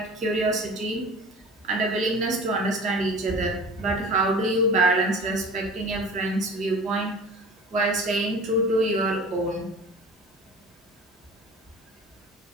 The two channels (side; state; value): both; normal; correlation 0.40